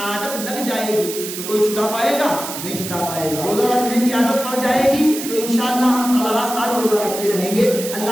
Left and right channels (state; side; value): noise; right; hiss, 8 dB below the sound